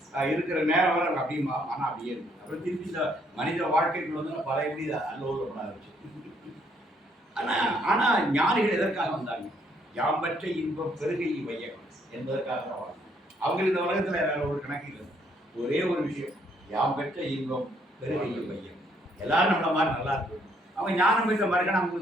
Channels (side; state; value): both; normal; correlation 0.69